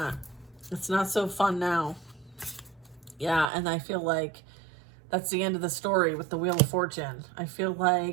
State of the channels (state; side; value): drops out; left; at 3.5 s